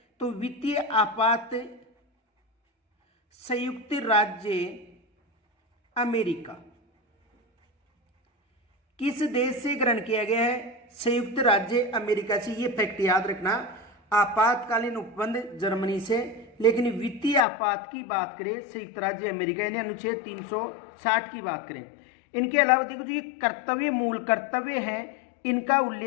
तो वित्तीय आपात संयुक्त राज्य अमेरिका किस देश से ग्रहण किया गया है? संयुक्त राज्य अमेरिका से। ये फैक्ट याद रखना। आपातकालीन उपबंध जर्मनी से, लेकिन वित्तीय आपात की बात करें संयुक्त राज्य अमेरिका यानी अनुच्छेद 360 की बात करें। इनके अलावा देखो जो ये कर्तव्य, मूल कर्तव्य है, इनका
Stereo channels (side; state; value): right; drops out; at 17.4 s